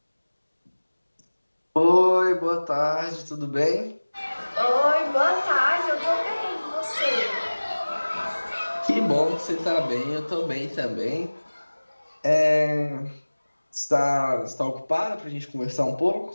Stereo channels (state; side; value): inverted; both; correlation -1.00